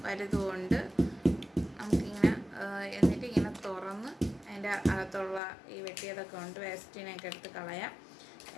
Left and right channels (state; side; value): drops out; right; at 5.4 s